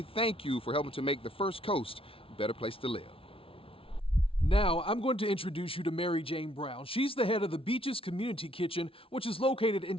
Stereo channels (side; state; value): right; late; 0.26 ms